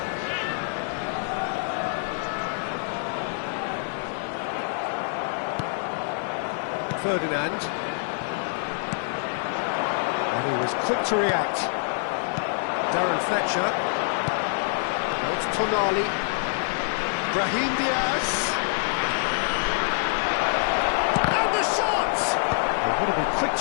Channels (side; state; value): right; silent; 59 dB below the other